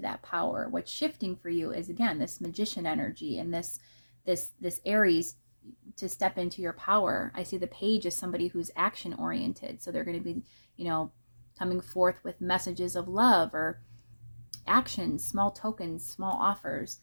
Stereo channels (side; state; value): both; inverted; correlation -1.00